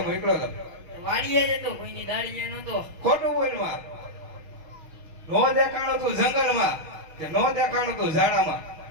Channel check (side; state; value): left; late; 6.3 ms